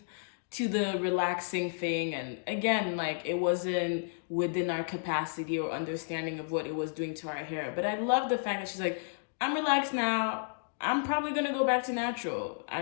to the relaxing thing, and again, like, it wasn't within our capacity or understanding of what it was doing to our hair. But I love the fact that she's like, I'm relaxed now. I'm probably gonna go back to natural. I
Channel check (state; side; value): silent; right; digital silence